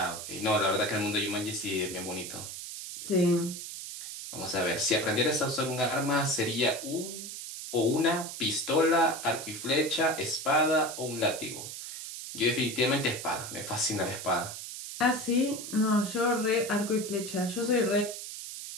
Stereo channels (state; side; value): noise; right; hiss, 9 dB below the sound